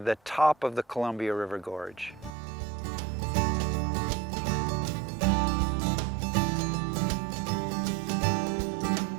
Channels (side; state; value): left; drops out; at 2.3 s